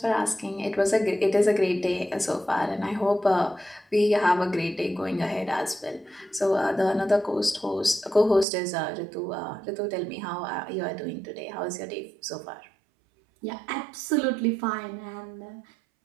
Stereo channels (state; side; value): drops out; left; at 8.5 s